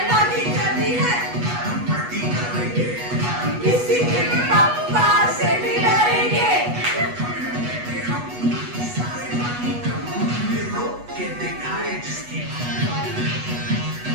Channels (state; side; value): late; left; 8.2 ms